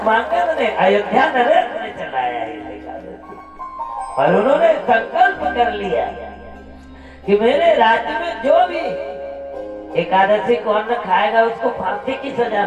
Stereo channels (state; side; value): identical; both; correlation 1.00